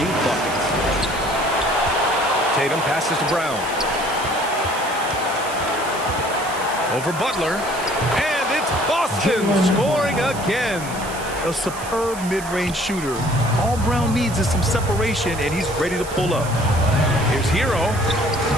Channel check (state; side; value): noise; right; hiss, 13 dB below the sound